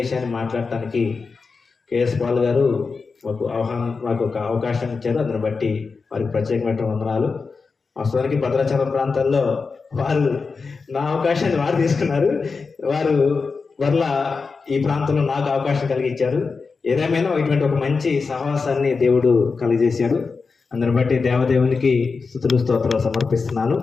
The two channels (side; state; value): right; quieter; 4.7 dB